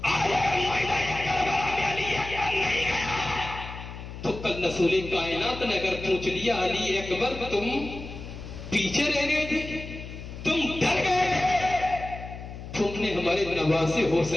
آج اگر میدان کربلا میں علی اکبر نہیں گیا تو کل رسول کائنات نے اگر پوچھ لیا علی اکبر تم پیچھے رہ گئے تھے، تم ڈر گئے تھے، تم نے ہمارے نواسے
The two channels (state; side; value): noise; left; hum, 11 dB below the sound